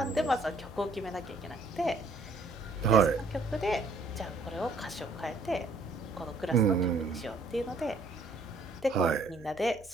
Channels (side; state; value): left; quieter; 3.0 dB